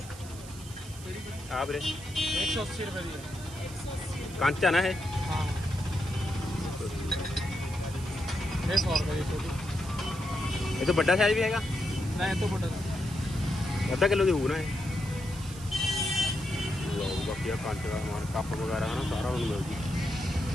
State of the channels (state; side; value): noise; right; hiss, 16 dB below the sound